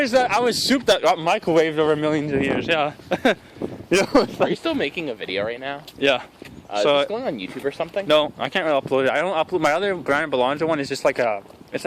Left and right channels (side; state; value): both; identical; correlation 1.00